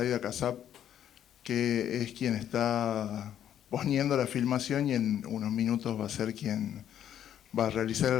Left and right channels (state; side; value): quieter; right; 10.3 dB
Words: Kassab, que es quien está poniendo la filmación y en unos minutos va a ser quien va a realizar